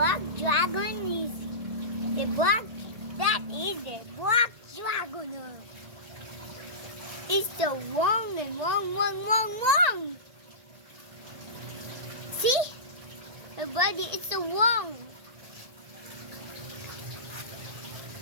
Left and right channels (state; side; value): late; left; 1.8 ms